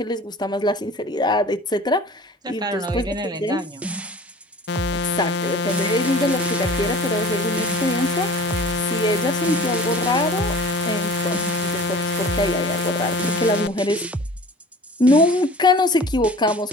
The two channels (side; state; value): both; normal; correlation 0.43